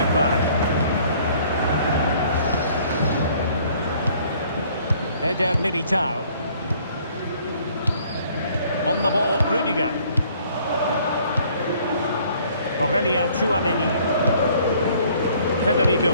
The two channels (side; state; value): both; inverted; correlation -0.59